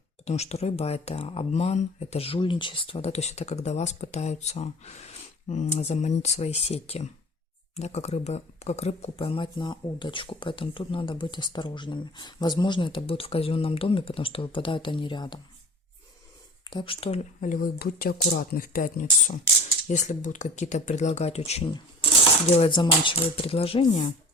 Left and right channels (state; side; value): normal; both; correlation 0.40